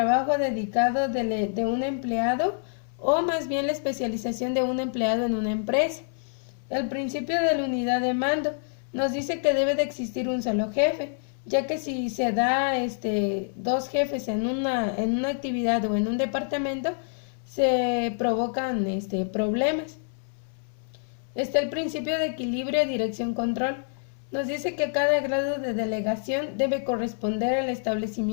dedicado de un empleado o más bien la especialización de un empleado en una empresa. El principio de la unidad de mando nos dice que debe de existir un solo jefe, ya que si se da dos jefes en una actividad o en un departamento, se provocan problemas. Está el principio de equilibrio, dirección, control. Nos dice que cada grado de delegación debe corresponder al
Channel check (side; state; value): right; silent; 60 dB below the other